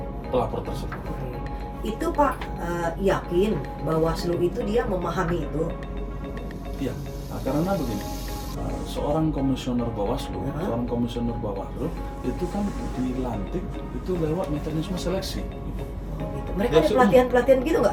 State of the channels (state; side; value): identical; both; correlation 1.00